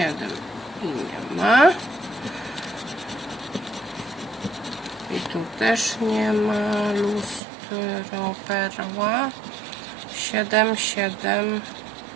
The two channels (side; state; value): left; drops out; at 7.4 s